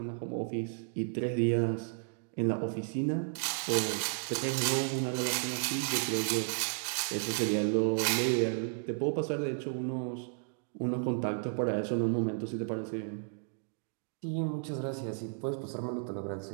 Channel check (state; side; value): silent; left; 56 dB below the other